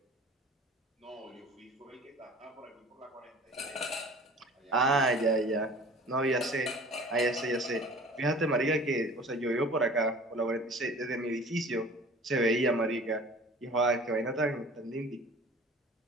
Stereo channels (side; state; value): both; normal; correlation 0.45